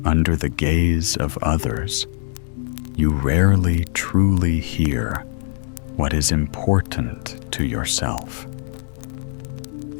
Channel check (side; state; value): right; silent; 64 dB below the other